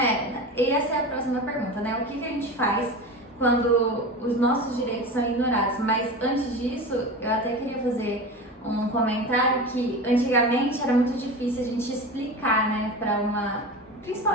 E essa é a próxima pergunta, né? O que a gente faz quando os nossos direitos são ignorados? Mas antes disso, eu até queria fazer um comentário que antigamente era muito difícil a gente explicar, né,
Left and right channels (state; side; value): normal; both; correlation 0.29